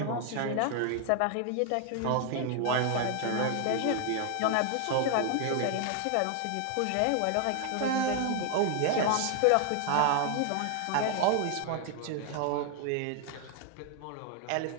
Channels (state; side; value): different; both; correlation 0.00